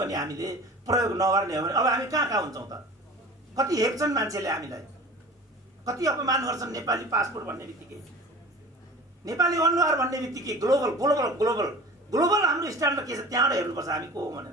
हामीले प्रयोग नगर्ने हो भने अब हामी कहाँ हुन्छौँ त? कति हेप्छन् मान्छेले हामीलाई, कति अपमान गर्छन्। नेपाली पासपोर्ट भन्ने बित्तिकै, नेपाली अनुहार भन्ने बित्तिकै ग्लोबल ग्लोबल ग्लोबल ग्लोबल हाम्रो स्ट्यान्डर्ड के छ त्यहाँबाट हेर्नुपर्छ हामी को हो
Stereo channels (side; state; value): both; normal; correlation 0.39